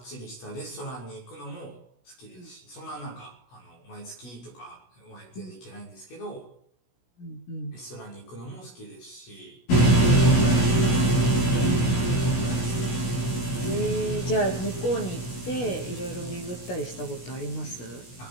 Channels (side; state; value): right; late; 16 ms